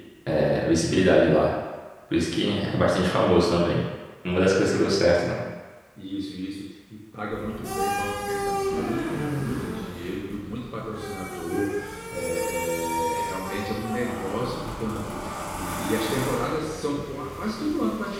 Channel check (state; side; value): identical; both; correlation 1.00